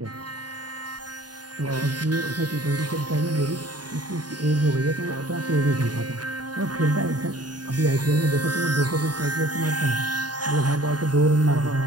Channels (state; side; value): late; left; 0.70 ms